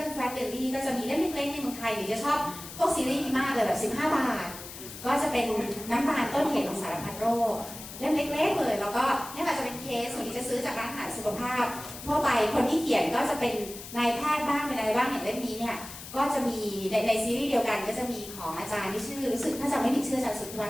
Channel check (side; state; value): left; noise; hiss, 13 dB below the sound